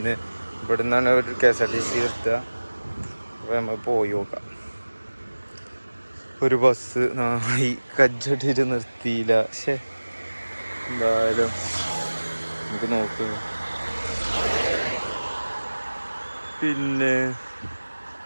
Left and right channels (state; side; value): inverted; both; correlation -1.00